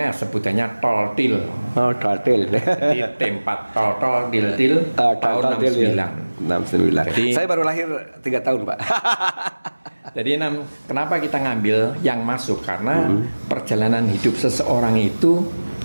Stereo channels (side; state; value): both; inverted; correlation -1.00